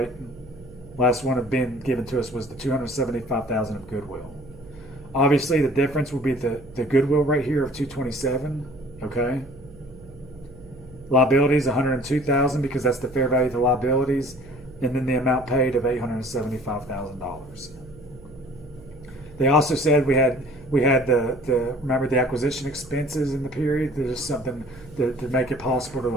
Last one of being given to us was the $275,000 of goodwill. Obviously, the difference will be the goodwill right here of $227,000. Okay. Liabilities $102,000 because that's the fair value of the liabilities, and then the amount paid of $875,000. They also said we had the remember the acquisition expenses in the period. There's something to make it possible to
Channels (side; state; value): right; noise; hum, 20 dB below the sound